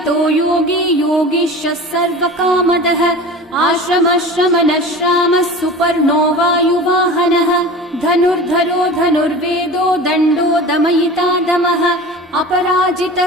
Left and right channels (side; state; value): both; normal; correlation 0.36